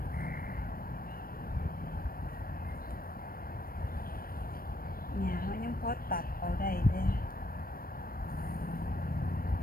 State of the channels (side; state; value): right; late; 0.43 ms